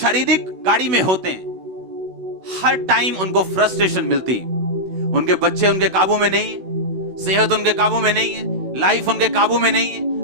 गाड़ी में होते हैं, हर टाइम उनको फ्रस्ट्रेशन मिलती है। उनके बच्चे उनके काबू में नहीं है, सेहत उनके काबू में नहीं है, लाइफ उनके काबू में नहीं है,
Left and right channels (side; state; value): left; late; 16 ms